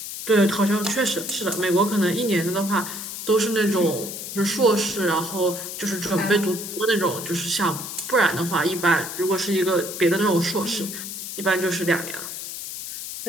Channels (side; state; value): left; noise; hiss, 8 dB below the sound